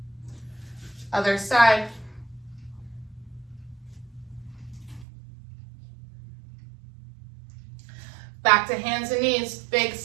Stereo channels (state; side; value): drops out; left; at 5.1 s